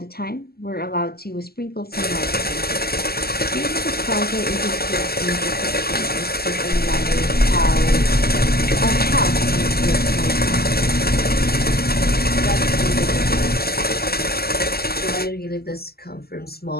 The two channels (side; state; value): right; late; 0.45 ms